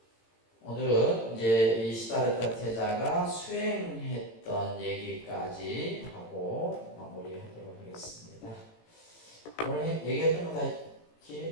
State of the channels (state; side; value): late; right; 18 ms